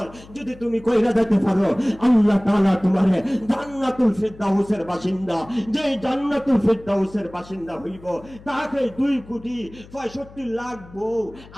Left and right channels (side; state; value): left; noise; hum, 21 dB below the sound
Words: যদি তুমি কইরা দিতে পারো, আল্লাহ তাআলা তোমারে জান্নাতুল ফিরদাউসের বাসিন্দা, যে জান্নাতুল ফিরদাউসের বাসিন্দা হইব, তাকে 2,65,00,000 বউ